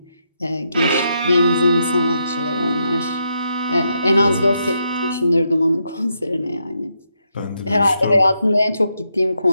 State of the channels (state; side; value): inverted; both; correlation -0.80